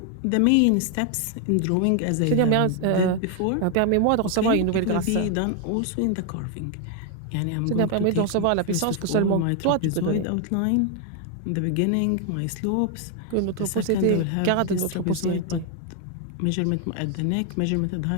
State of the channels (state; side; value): different; both; correlation 0.00